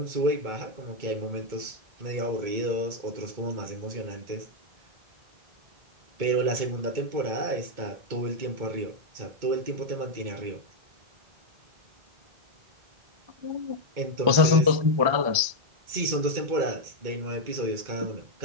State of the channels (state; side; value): late; left; 1.3 ms